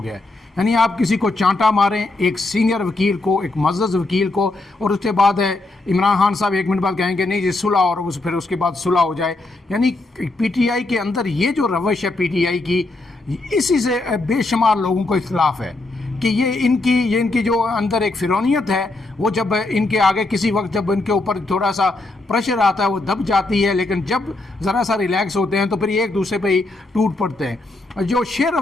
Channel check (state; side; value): quieter; right; 3.0 dB